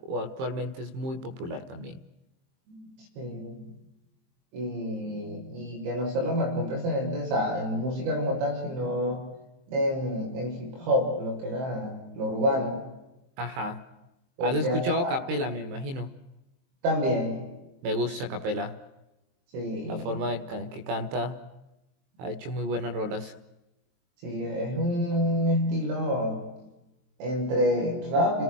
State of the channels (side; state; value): left; late; 23 ms